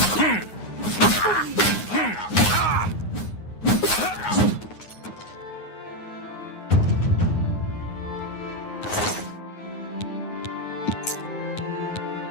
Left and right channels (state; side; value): late; right; 9.5 ms